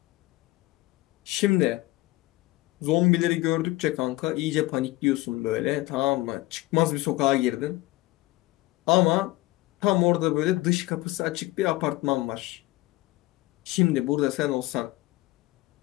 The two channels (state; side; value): quieter; right; 19.0 dB